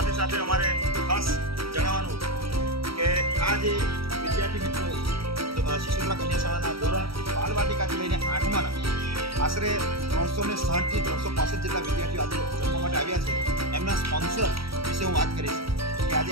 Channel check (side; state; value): left; late; 0.75 ms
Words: સાથે અમારે ખાસ જણાવવાનું કે આ જે વિદ્યાર્થી મિત્રો સિસોદરા કન્યા શાળાના ધોરણ બાલવાટિકાથી લઈને 8માના આશરે 360 થી 365 જેટલા વિદ્યાર્થીઓ આજે જમવા માટે આવ્યા છે. એમના સ્પોન્સર વિશે હું વાત કરીશ કે આજે